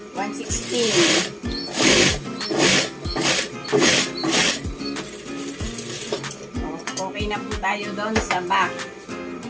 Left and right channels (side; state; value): both; identical; correlation 1.00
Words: 1/16. Okay na po tayo doon sa back.